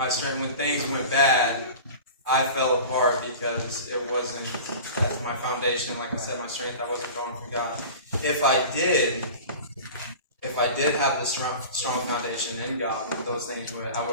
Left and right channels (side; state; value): both; inverted; correlation -0.37